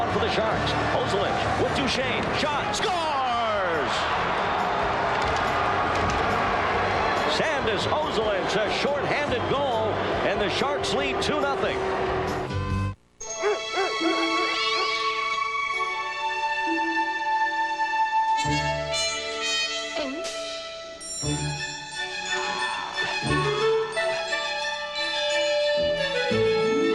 for the Sharks. Ozelich with Duchesne. Shot. Scores! Sandis Ozelich, a short-handed goal, and the Sharks lead 2-0.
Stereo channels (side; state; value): both; identical; correlation 1.00